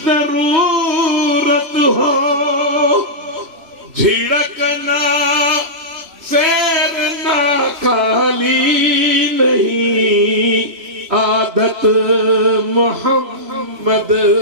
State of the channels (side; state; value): left; late; 3.0 ms